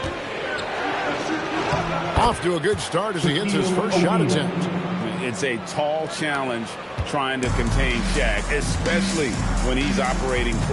Off to a good start as he hits his first shot attempt. It's a tall challenge trying to contain Shaq, especially when he's operating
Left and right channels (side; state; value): both; identical; correlation 1.00